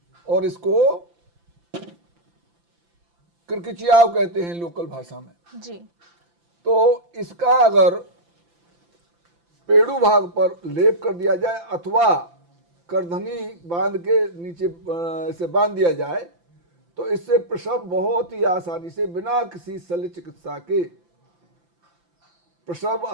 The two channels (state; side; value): late; left; 5.9 ms